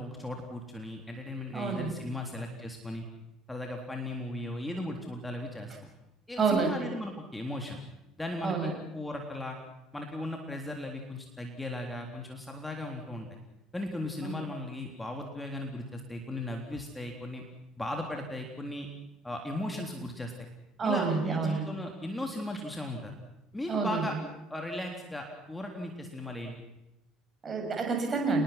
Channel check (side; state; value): both; normal; correlation 0.63